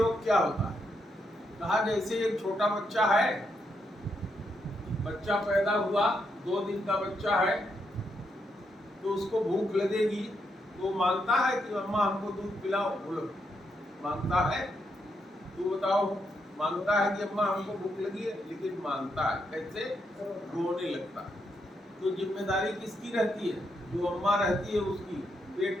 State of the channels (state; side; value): normal; both; correlation 0.80